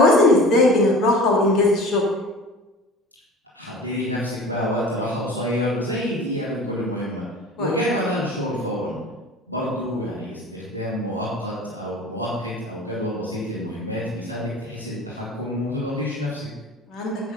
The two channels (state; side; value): normal; both; correlation 0.39